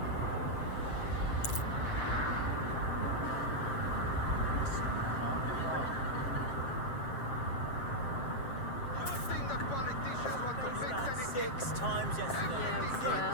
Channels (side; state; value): right; late; 7.6 ms